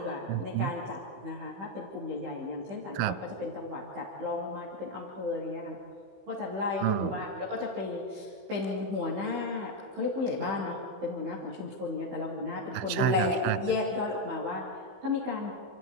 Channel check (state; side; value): late; left; 16 ms